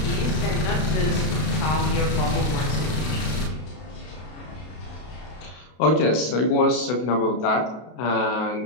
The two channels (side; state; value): right; late; 32 ms